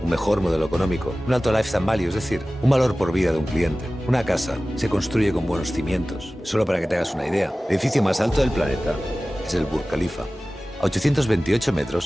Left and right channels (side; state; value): both; normal; correlation 0.97